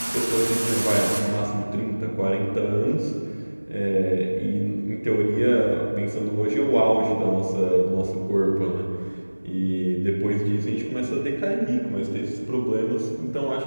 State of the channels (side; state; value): both; inverted; correlation -1.00